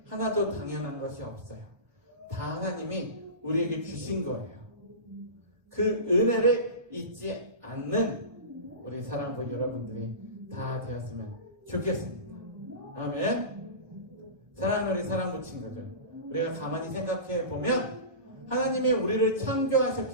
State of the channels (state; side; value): late; left; 1.4 ms